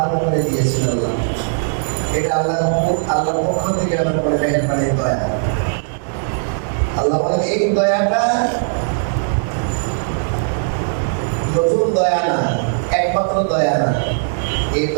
করে দিয়েছিলেন আল্লাহ। এটা আল্লাহর পক্ষ থেকে আল্লাহর মেহেরবানি, দয়া। আল্লাহ বলেন এই দয়াটা নতুন দয়া না, একমাত্র দয়া না, এই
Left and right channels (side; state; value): left; silent; 65 dB below the other